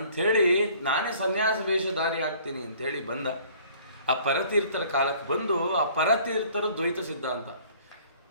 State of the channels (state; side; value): inverted; both; correlation -0.54